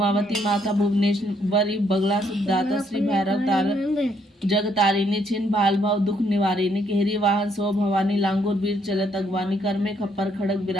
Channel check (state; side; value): normal; both; correlation 0.71